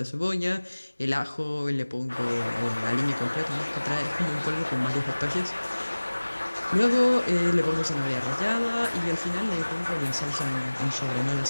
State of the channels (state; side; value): inverted; both; correlation -1.00